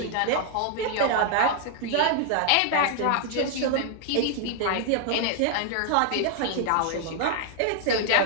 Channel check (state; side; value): different; both; correlation -0.01